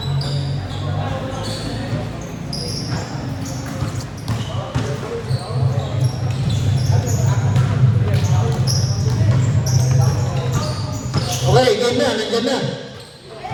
Okay, game na, nandiyan na.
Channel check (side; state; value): both; identical; correlation 1.00